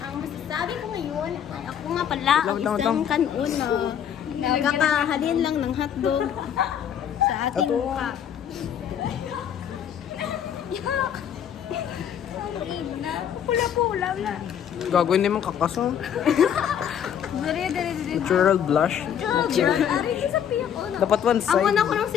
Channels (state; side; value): quieter; right; 9.0 dB